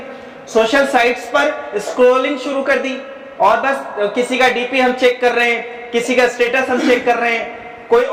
سوشل سائٹس پر اسکرولنگ شروع کر دی, اور بس کسی کا ڈی پی ہم چیک کر رہے ہیں, کسی کا اسٹیٹس ہم چیک کر رہے ہیں, کوئی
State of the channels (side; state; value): both; identical; correlation 1.00